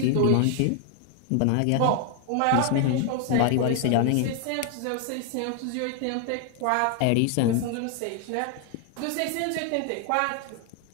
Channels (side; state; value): both; different; correlation 0.00